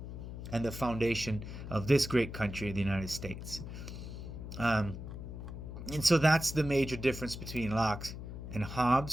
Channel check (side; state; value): left; noise; hum, 9 dB below the sound